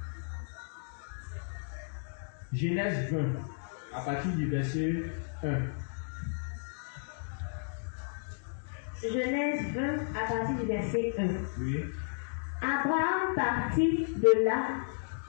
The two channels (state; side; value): silent; right; digital silence